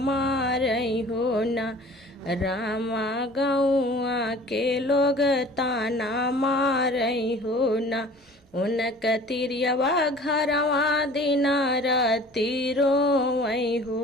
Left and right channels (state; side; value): normal; both; correlation 0.46